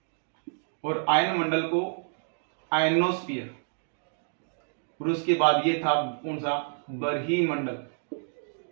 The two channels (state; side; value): silent; left; digital silence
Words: और आयन मंडल को आयनोस्फीयर, और उसके बाद ये था कौन सा, बरही मंडल,